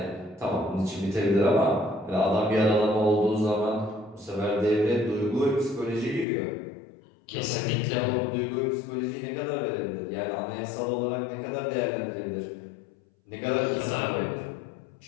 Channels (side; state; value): right; drops out; at 6.2 s